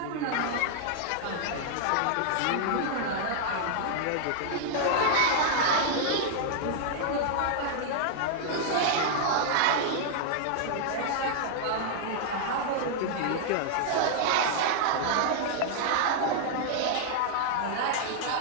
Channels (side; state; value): both; different; correlation -0.01